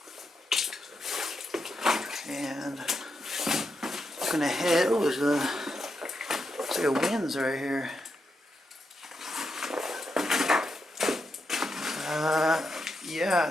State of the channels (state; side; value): normal; both; correlation 0.84